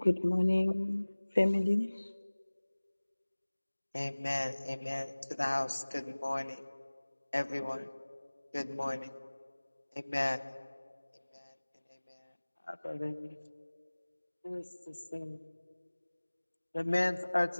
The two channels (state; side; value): inverted; both; correlation -1.00